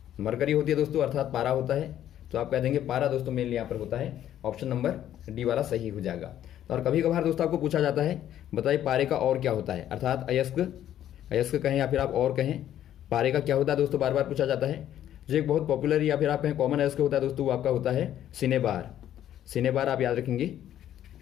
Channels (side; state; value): right; quieter; 11.4 dB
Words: मरकरी होती है दोस्तों, अर्थात पारा होता है। तो आप कह देंगे पारा दोस्तों मेनली यहाँ पर होता है। ऑप्शन नंबर डी वाला सही हो जाएगा। और कभी कभार दोस्तों आपको पूछा जाता है बताइए पारे का और क्या होता है, अर्थात अयस्क कहें या फिर आप और कहें, पारे का क्या होता है दोस्तों, बार बार पूछा जाता है। जो एक बहुत पॉपुलर या फिर आप कहें कॉमन अयस्क होता है दोस्तों, वो आपका होता है सिनेबार आप याद रखेंगे,